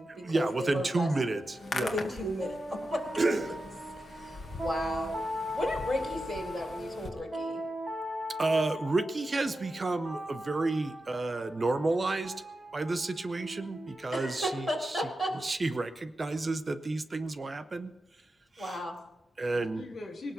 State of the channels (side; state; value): both; normal; correlation 0.91